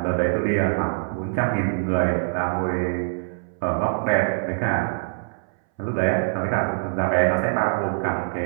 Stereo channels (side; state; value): left; silent; 63 dB below the other